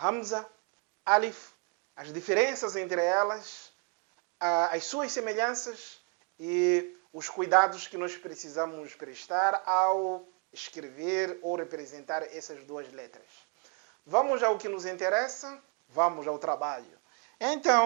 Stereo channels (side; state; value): left; quieter; 34.0 dB